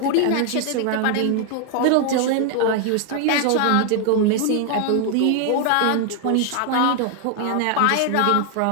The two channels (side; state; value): both; different; correlation 0.00